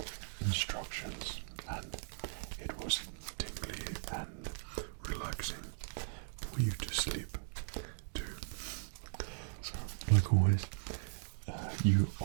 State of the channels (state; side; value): silent; left; digital silence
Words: instructions, and it was tingly and relaxing for you to sleep too. So like always, you